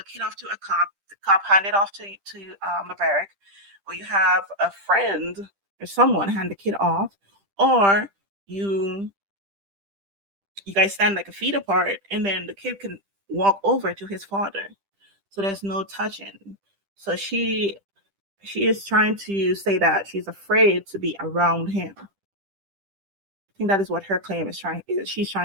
kid off to a cop, the cop hand it off to LeBrecht, or you have a friend or someone hand the kid off, or you you guys stand like a feet apart, and then the kid can walk over to his father. So there's no touching. So she is trying to say that she's afraid to be around him. I think that is what her claim is trying. She's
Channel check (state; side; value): late; left; 10 ms